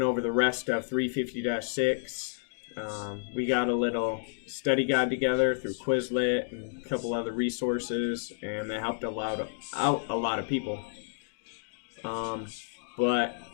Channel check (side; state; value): right; silent; digital silence